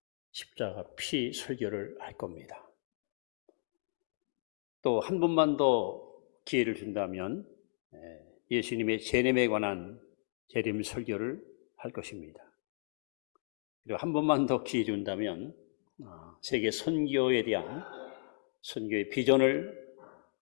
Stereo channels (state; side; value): silent; right; digital silence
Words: 설교를 할 겁니다. 또 한 번만 더 기회를 준다면 예수님의 재림에 관한 재림 설교를 할 것입니다. 그리고 한 번만 더 기회 준다면 세계 선교에 대한 선교의 비전을